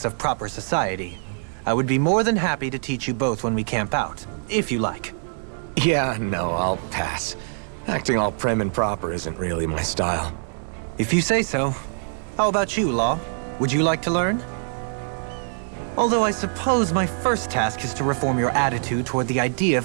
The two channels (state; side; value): silent; left; digital silence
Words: of proper society. I would be more than happy to teach you both when we camp out, if you like. Yeah, no, I'll pass. Acting all prim and proper isn't really my style. If you say so. How about you, Law? Would you like to learn? Although I suppose my first task is to reform your attitude toward the idea